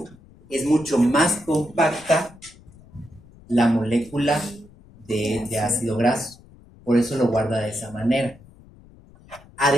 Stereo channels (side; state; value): left; noise; rumble, 24 dB below the sound